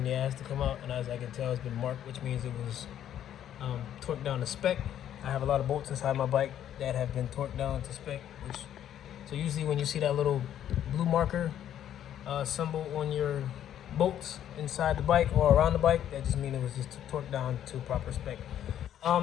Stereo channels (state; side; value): quieter; right; 10.7 dB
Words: the ass to come out, and as I can tell, it's been marked, which means it was torqued down to spec. I have a lot of bolts inside my bike that have been torqued down to spec, so usually when you see that little blue marker symbol on your bolts inside the bike or around the bike, that just means it was just torqued down to proper spec.